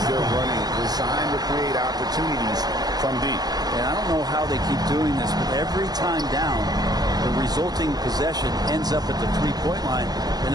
they're running designed to create opportunities from deep. And I don't know how they keep doing this, but every time down, the resulting possession ends up at the three-point line in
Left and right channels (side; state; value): left; late; 0.19 ms